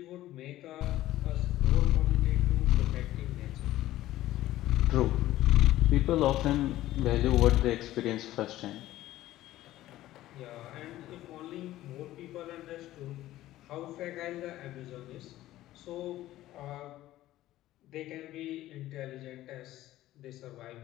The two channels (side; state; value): right; quieter; 15.0 dB